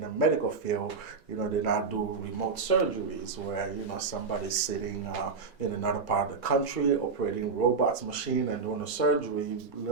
a medical field. They now do remote surgeries where, somebody's sitting in another part of the country operating robots machine and doing a surgery,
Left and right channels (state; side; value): quieter; left; 4.9 dB